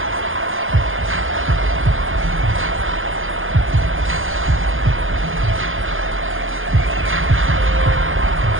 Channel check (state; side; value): late; left; 0.59 ms